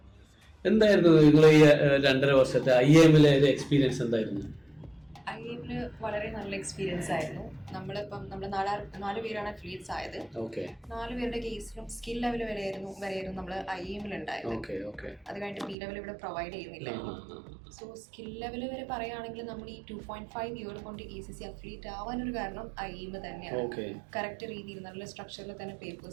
എന്തായിരുന്നു നിങ്ങൾ ഈ 2.5 വർഷത്തെ IIM-ലെ ഒരു എക്സ്പീരിയൻസ് എന്തായിരുന്നു? IIM-ല് വളരെ നല്ല എക്സ്പീരിയൻസ് ആയിരുന്നു. നമ്മളിപ്പം നമ്മൾ 4 പേരാണ് അഫിലിയേറ്റ്സ് ആയത്. 4 പേരുടെ കേസിലും സ്കിൽ ലെവൽ വരെയായിരുന്നു നമ്മൾ IIM-ൽ ഉണ്ടായത്. അത് കഴിഞ്ഞിട്ട് B ലെവൽ ഇവിടെ പ്രൊവൈഡ് ചെയ്യുന്നില്ല. സോ സ്കിൽ ലെവൽ വരെ പറയുകയാണെങ്കിൽ നമ്മൾ ഈ 2.5 ഇയർ കൊണ്ട് ACC അഫിലിയേറ്റ് ആവാനൊരു കാരണം IIM തന്നെയാണ്. കറക്റ്റ് രീതിയിൽ നല്ല സ്ട്രക്ചറിൽ തന്നെ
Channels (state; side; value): drops out; left; at 15.8 s